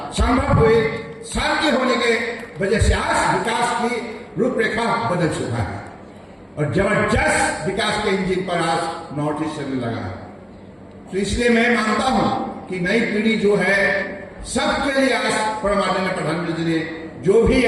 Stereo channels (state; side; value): identical; both; correlation 1.00